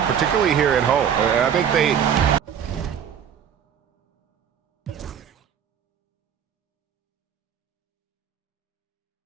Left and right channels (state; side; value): quieter; left; 8.4 dB